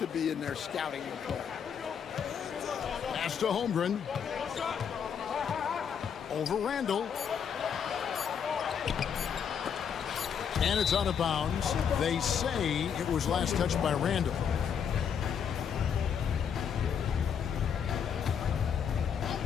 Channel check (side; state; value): right; quieter; 7.6 dB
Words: be in their scouting report. Pass to Holmgren. Over Randall. And it's out of bounds. They say it was last touched by Randall.